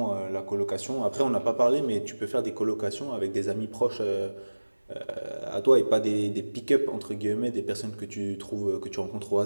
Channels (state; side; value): inverted; both; correlation -1.00